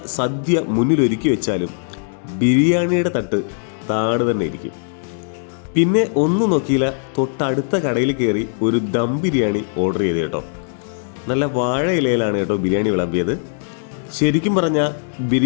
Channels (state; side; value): silent; right; digital silence